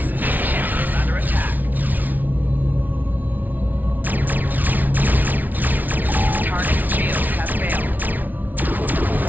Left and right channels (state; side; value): late; left; 0.080 ms